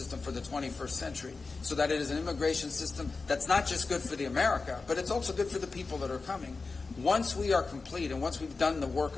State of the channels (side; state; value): right; quieter; 4.1 dB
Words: for the 21st century so that it is an immigration system that's not just good for the America, but it's also good for the people that are coming. Once we are complete and once we've done the work